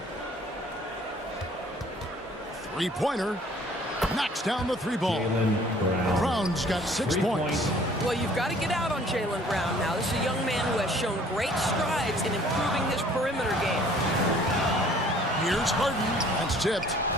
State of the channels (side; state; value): both; normal; correlation 0.55